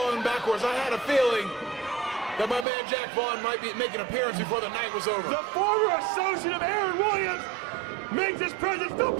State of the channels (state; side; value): drops out; left; at 2.7 s